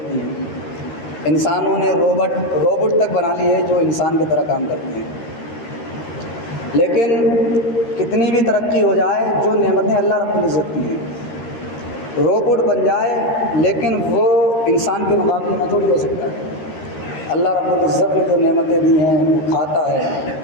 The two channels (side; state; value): right; late; 13 ms